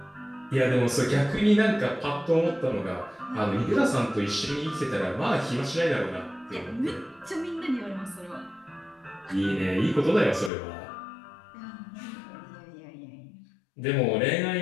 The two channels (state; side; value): drops out; right; at 10.5 s